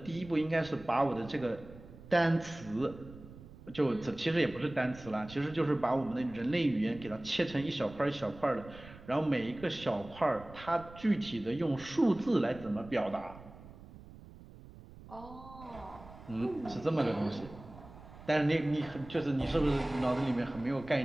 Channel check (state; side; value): noise; right; rumble, 18 dB below the sound